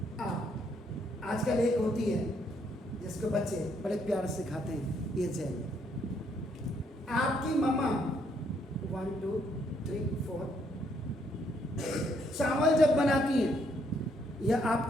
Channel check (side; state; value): both; normal; correlation 0.71